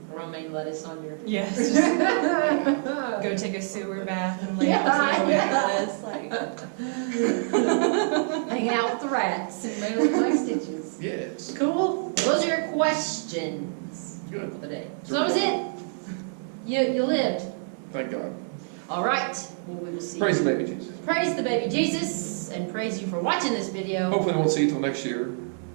romaine lettuce on your. Yes. Just go take a sewer bath and lay Yeah, out some Hanging out with the rats and my stitches. Yes. Cool. Those are your questions Good. for the day. So that was it. You lived. Thank God. All right. Well, we will see. Praise the baby Jesus. Praise the baby Jesus, and praise you for watching this video. Hopefully I won't see you till next year.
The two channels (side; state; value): left; silent; digital silence